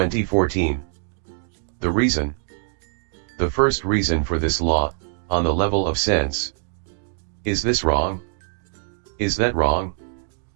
The reason. The first reason for this law, on the level of sense. Is this wrong? Is that wrong?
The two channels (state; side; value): silent; left; 63 dB below the other